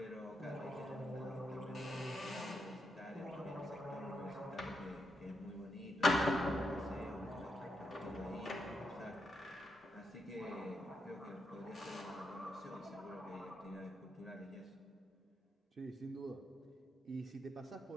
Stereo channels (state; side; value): normal; both; correlation 0.82